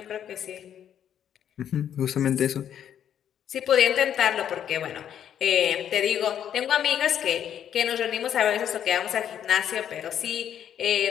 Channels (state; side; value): quieter; right; 9.6 dB